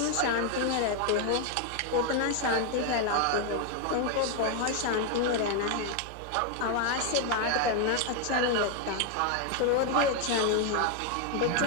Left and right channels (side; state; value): both; different; correlation 0.01